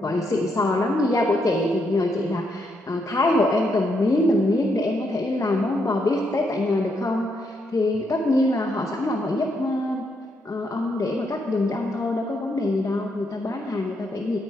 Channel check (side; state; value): both; normal; correlation 0.78